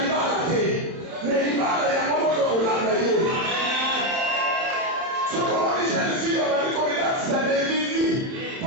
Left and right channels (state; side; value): late; left; 31 ms